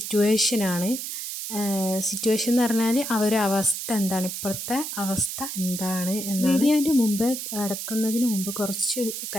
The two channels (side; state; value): right; noise; hiss, 6 dB below the sound